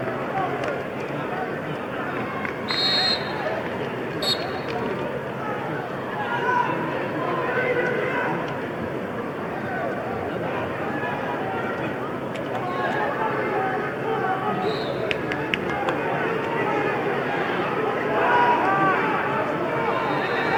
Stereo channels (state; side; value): identical; both; correlation 1.00